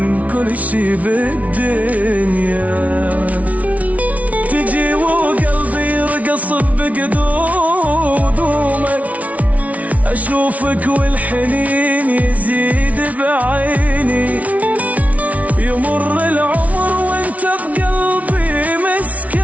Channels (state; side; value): late; left; 0.069 ms